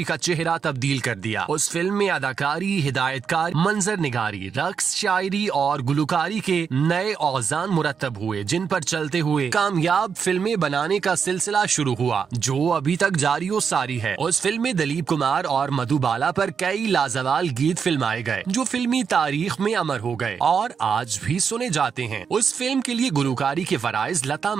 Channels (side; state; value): left; quieter; 6.4 dB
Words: का चेहरा तब्दील कर दिया। उस फिल्म में अदाकारी, हिदायतकार, मंजर निगारी, रक्स, शायरी और गुलकारी के नए औजान मुरतब हुए, जिन पर चलते हुए कामयाब फिल्में बनाने का सिलसिला शुरू हुआ, जो अभी तक जारी व सारी है। उस फिल्म में दिलीप कुमार और मधुबाला पर कई लाजवाल गीत फिल्माए गए, जो फिल्मी तारीख में अमर हो गए और आज भी सुने जाते हैं। उस फिल्म के लिए गुलकारी के फराइज लता